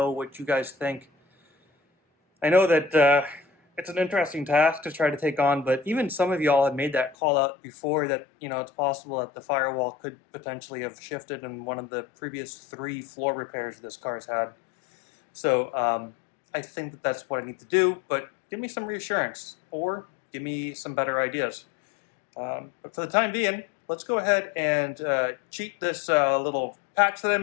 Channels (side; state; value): right; drops out; at 7.2 s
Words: what you guys think. I know that it's an interesting task to try to take on, but even some of y'all had made that call out before that, you know, it's possible that the firewall could potentially have shifted in one of the previous 3 floor repairs this car's had. So I think that that's what I need to do, but give me some reassurance or give me some better ideas. But for the time being, let's go ahead and cheat this little patch that I